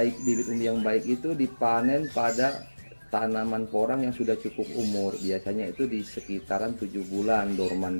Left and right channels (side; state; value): both; inverted; correlation -1.00